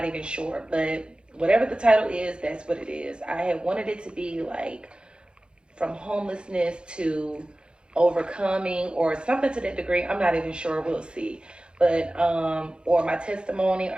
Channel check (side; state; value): left; late; 0.053 ms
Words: even sure. But whatever the title is, that's what it is. I had wanted it to be like from homelessness to overcoming or something to that degree. I'm not even sure. We'll see. But or my testimony.